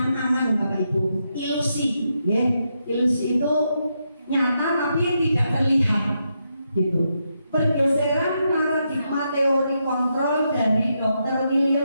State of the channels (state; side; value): inverted; both; correlation -0.82